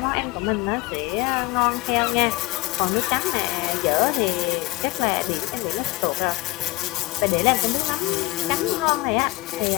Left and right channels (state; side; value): quieter; right; 20.2 dB